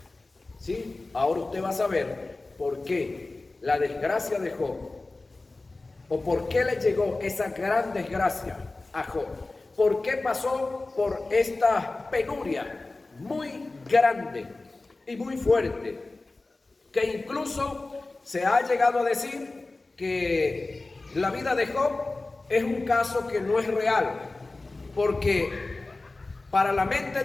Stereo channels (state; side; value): quieter; right; 3.2 dB